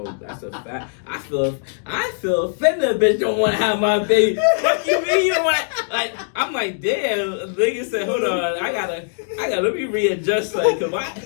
That's a fact. I feel offended. A bitch don't want to have my baby. Fuck you mean you don't want? Like I'm like, damn. Nigga said, hold on. I gotta. Let me readjust. Like,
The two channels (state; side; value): silent; right; digital silence